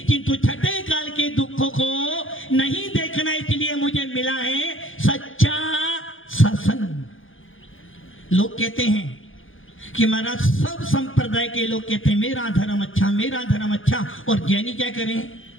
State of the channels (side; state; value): right; late; 0.58 ms